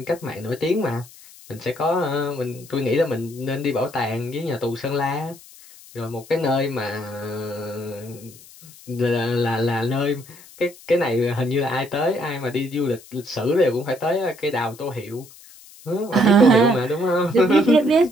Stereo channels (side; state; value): left; noise; hiss, 21 dB below the sound